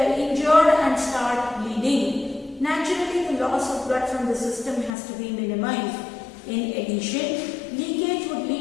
injured and start bleeding. Naturally, the loss of blood from the system has to be minimized. In addition, leakage would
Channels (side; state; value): right; drops out; at 4.9 s